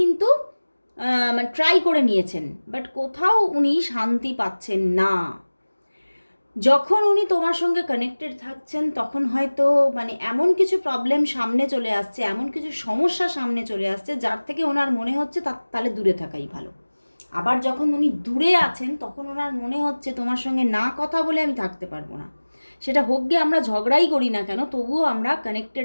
মানে ট্রাই করে নিয়েছেন, বাট কোথাও উনি শান্তি পাচ্ছেন না। যখন উনি তোমার সঙ্গে কানেক্টেড থাকছেন তখন হয়তো মানে এমন কিছু প্রবলেম সামনে চলে আসছে, এমন কিছু সমস্যা সামনে চলে আসছে যার থেকে ওনার মনে হচ্ছে তাহলে দূরে থাকাই ভালো। আবার যখন উনি দূরে আছেন তখন ওনার মনে হচ্ছে তোমার সঙ্গে না কথা বলে আমি থাকতে পারবো না, সেটা হোক গিয়ে আমরা ঝগড়াই করি না কেন, তবুও আমরা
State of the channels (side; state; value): both; inverted; correlation -1.00